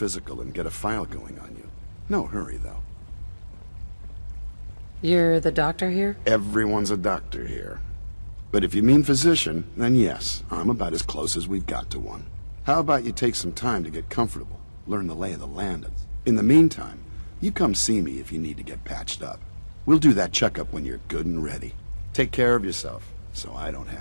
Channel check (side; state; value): both; inverted; correlation -1.00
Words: and get a file going on you. No hurry, though. You're the doctor here? Everyone's a doctor here. But if you mean physician, then yes, I'm about as close as we've got to one. How about you take some time to get comfortable, learn the lay of the land. In the meantime, you come see me if you need to get patched up. We'll do that checkup when you're good and ready. Take care of yourself, so I don't